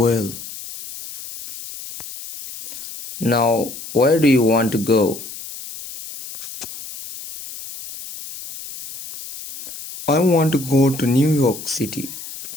Now, where do you want to go? I want to go to New York City.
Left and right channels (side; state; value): left; noise; hiss, 12 dB below the sound